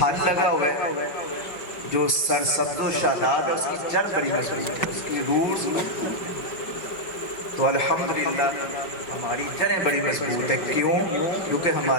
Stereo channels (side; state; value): right; late; 5.1 ms